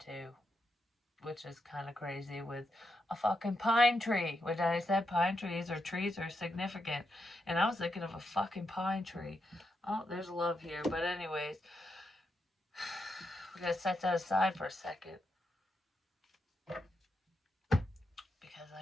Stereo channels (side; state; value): both; normal; correlation 0.84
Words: which is kind of crazy, with a fucking pine tree, which I said trees are significant, and I was thinking of a fucking pine tree. Oh, there's love here, but anyways, we gotta set that aside for a second. Because